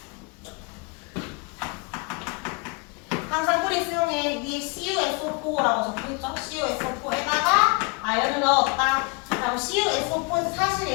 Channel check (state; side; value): quieter; right; 31.3 dB